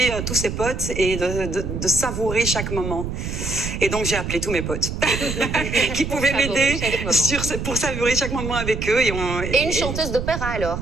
tous ses potes et de savourer chaque moment. Et donc j'ai appelé tous mes potes qui pouvaient Savourer m'aider chaque moment. pour savourer chaque moment avec eux. Et une chanteuse d'opéra alors?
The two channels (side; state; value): right; noise; rumble, 5 dB below the sound